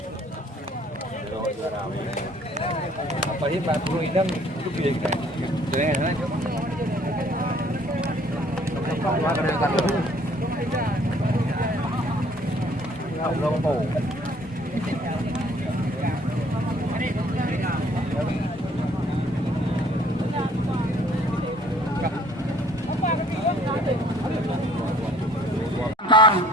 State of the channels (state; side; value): normal; both; correlation 0.58